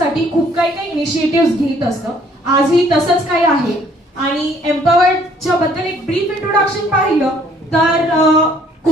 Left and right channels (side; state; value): both; normal; correlation 0.61